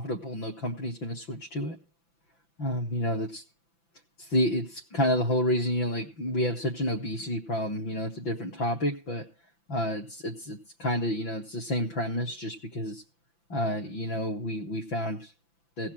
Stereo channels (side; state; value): right; late; 5.9 ms